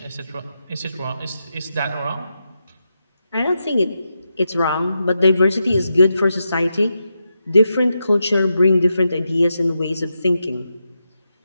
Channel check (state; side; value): inverted; both; correlation -0.86